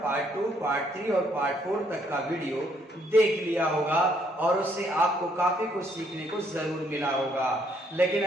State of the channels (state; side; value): normal; both; correlation 0.69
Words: पार्ट 2, पार्ट 3 और पार्ट 4 तक का वीडियो देख लिया होगा और उससे आपको काफी कुछ सीखने को जरूर मिला होगा। लेकिन